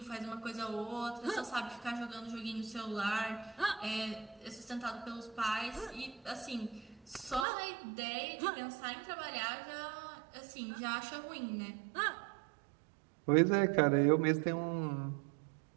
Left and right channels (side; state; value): left; drops out; at 7.5 s